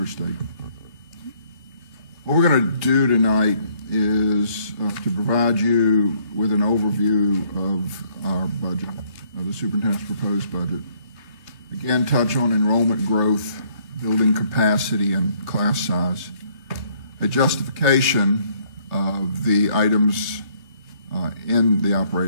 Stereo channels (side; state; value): left; late; 3.0 ms